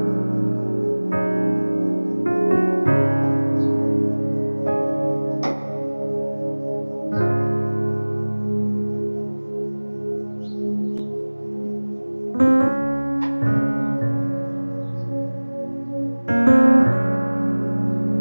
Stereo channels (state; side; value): inverted; both; correlation -1.00